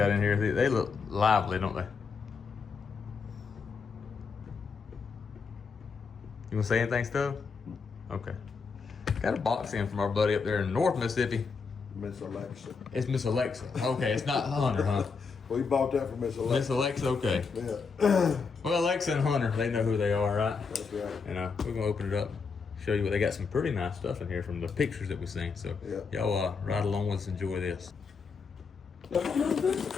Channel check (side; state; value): right; quieter; 5.2 dB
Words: in here. They look lively, don't they? You wanna say anything, Stuff? Okay. Got a box in from our buddy up there in North Mississippi. Miss Alexa. It's Miss Alexa. Okay, it's not Hunter, huh? We bought that from Miss Alexa. Miss Alexa, okay. Yeah. Well, Alexa and Hunter, they know who they are, right? That's right. And we're gonna open it up, show you what they got. Some pretty nice stuff in here from the pictures that we've seen. So y'all ride along with us, enjoy this.